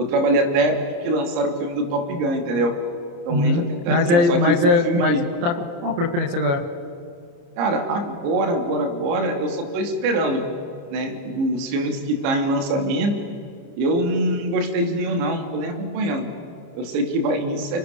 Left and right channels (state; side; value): late; left; 29 ms